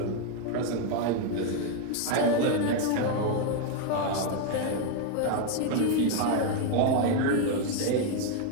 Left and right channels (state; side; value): different; both; correlation 0.01